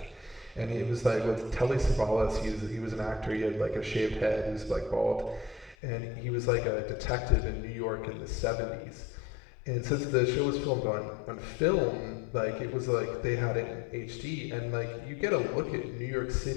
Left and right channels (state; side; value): drops out; right; at 5.8 s